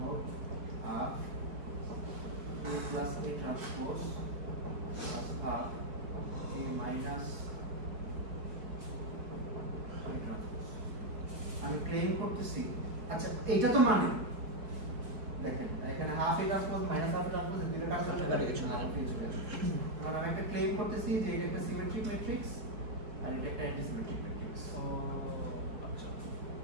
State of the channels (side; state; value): left; late; 4.6 ms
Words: half a plus a transpose plus half a minus a transpose. আমি ক্লেম করতেছি, আচ্ছা এটা তো মানে দেখেন এখানে half a transpose minus half a transpose এর দুটো কাজ করতে পারে কিছু না, কারণ আমি একটা ক্লেম করতেছি যে এটা একটা সিমেট্রিক ম্যাট্রিক্স আর এটা একটা antisymmetric matrix.